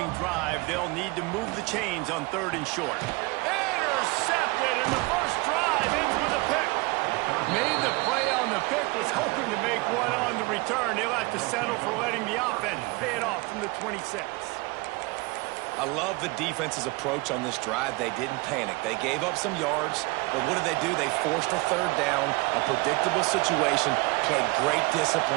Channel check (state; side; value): quieter; left; 24.8 dB